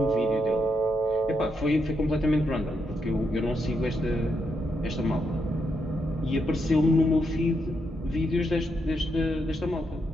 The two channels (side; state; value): both; normal; correlation 0.80